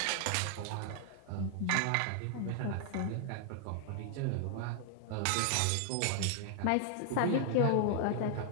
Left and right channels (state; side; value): different; both; correlation 0.00